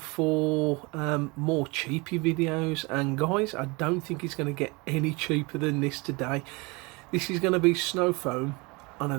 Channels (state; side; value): quieter; left; 26.8 dB